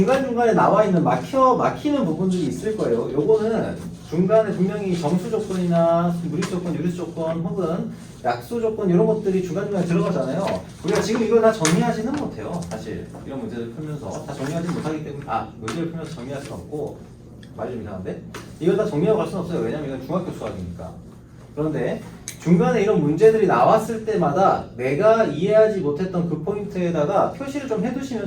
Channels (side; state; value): both; identical; correlation 1.00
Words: 나와 있는 막히는 부분들이 있을 거예요. 요거는 중간에 분명히 정수 조건이나 무리수 조건, 유리수 조건 혹은 약수 조건 이런 것들이 중간중간에 들어가잖아요. 우리가 지금 이걸 다 정리하지는 못해요. 사실 이런 문제를 풀면서 다 정리하지 못하기 때문에 문제를 풀면서 정리할 수는 없고 말이 좀 이상한데 이걸 다 정리하고 갈 수는 없어요. 왜냐면 이건 중학교 수학이니까. 그런데 중간에 이런 문제들이 나왔을 때마다 내가 이해하지 못했던 그 포인트에다가 표시를 좀